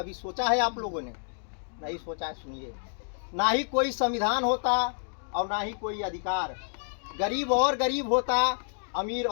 सोचा है आप लोगों ने? नहीं सोचा है। सुनिए, ना ही कोई संविधान होता और ना ही कोई अधिकार, गरीब और गरीब होता, अमीर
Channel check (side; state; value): right; silent; digital silence